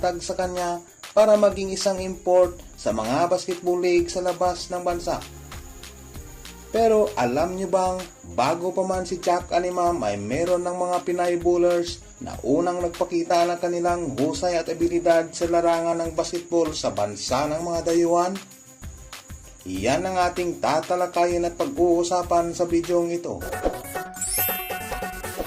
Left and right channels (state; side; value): identical; both; correlation 1.00